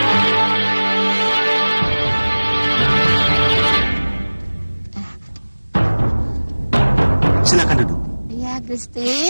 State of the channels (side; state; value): both; inverted; correlation -1.00